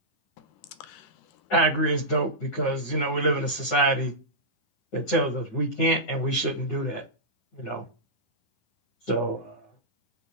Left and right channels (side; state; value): right; late; 9.6 ms